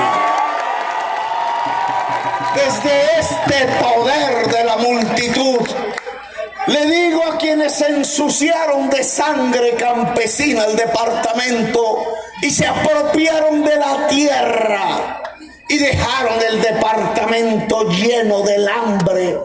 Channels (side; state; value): both; identical; correlation 1.00